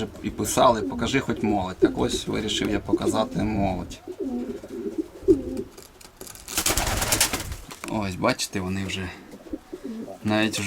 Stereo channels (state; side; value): identical; both; correlation 1.00